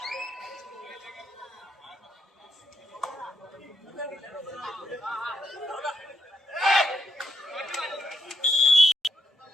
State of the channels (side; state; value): both; normal; correlation 0.81